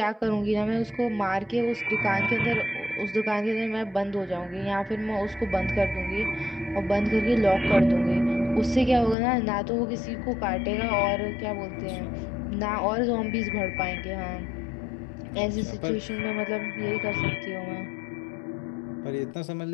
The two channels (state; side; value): drops out; right; at 9.2 s